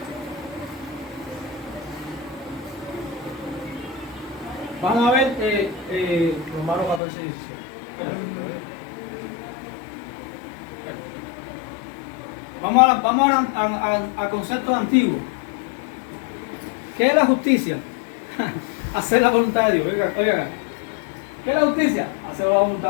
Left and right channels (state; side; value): drops out; right; at 7.0 s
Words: Vamos a ver Romanos 14, 17. Vamos a conceptos antiguos. ¿Qué es la justicia? Hacer la voluntad de Dios. Oiga. ¿Qué es la justicia? Hacer la